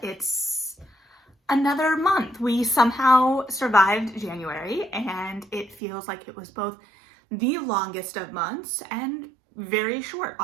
It's another month. We somehow survived January, and it feels like it was both the longest of months and very short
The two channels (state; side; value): drops out; left; at 5.8 s